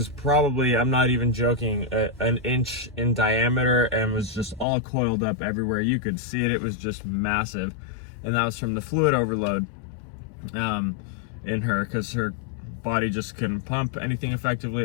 probably, I'm not even joking, an inch in diameter and was just all coiled up everywhere. You could see it. It was just massive. And that was from the fluid overload in her, because her body just couldn't pump anything effectively.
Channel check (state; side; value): drops out; right; at 4.7 s